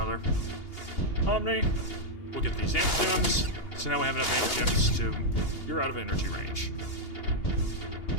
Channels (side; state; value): right; late; 2.8 ms